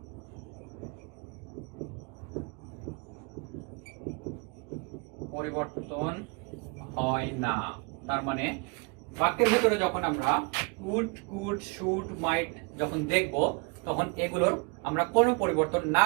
পরিবর্তন হয় না, তার মানে বাক্যের ভেতরে যখন আমরা উড, কুড, শুড, মাইট যখন দেখব তখন এগুলোর আমরা কোনো পরিবর্তন না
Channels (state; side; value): quieter; left; 31.8 dB